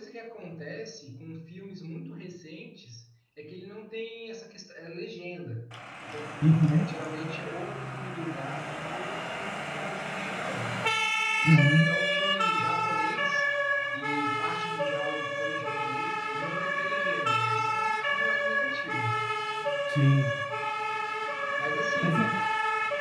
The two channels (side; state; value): both; identical; correlation 1.00